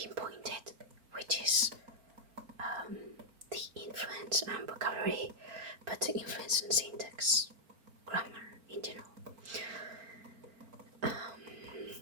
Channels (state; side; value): late; left; 4.4 ms